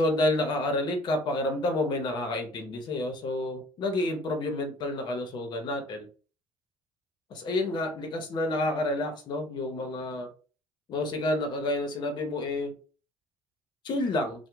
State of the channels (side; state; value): both; normal; correlation 0.51